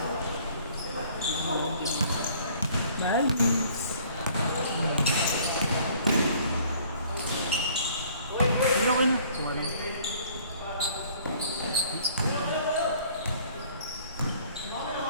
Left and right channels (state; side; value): inverted; both; correlation -0.56